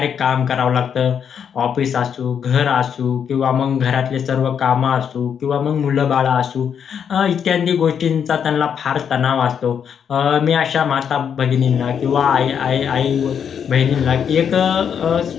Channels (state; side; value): quieter; right; 7.8 dB